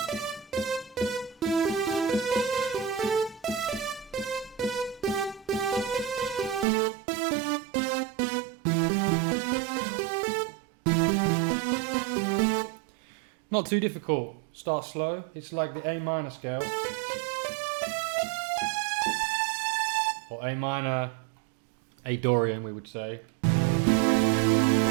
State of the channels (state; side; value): drops out; left; at 6.7 s